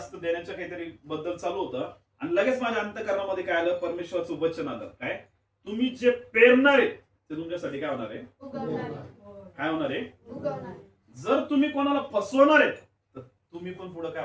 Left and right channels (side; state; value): both; identical; correlation 1.00